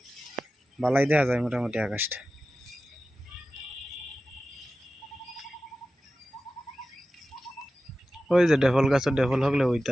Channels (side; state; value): both; normal; correlation 0.94